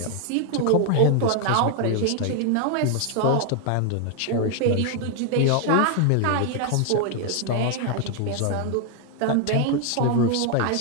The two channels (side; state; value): both; different; correlation 0.00